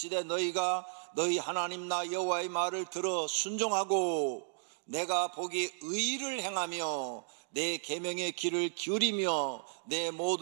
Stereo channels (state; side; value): silent; left; digital silence